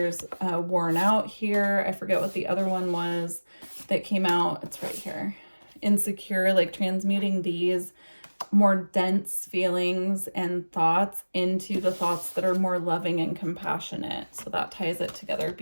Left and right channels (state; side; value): inverted; both; correlation -1.00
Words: worn out here. I forget what the other one was that came out. It's right here. Insecure, like transmuting these more dense feelings and thoughts into the thoughts that are more loving and compassionate. So that ties it together